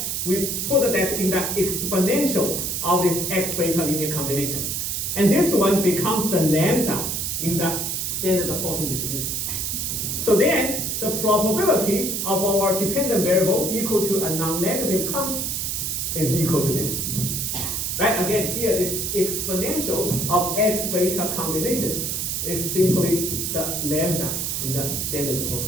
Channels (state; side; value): noise; right; hiss, 1 dB below the sound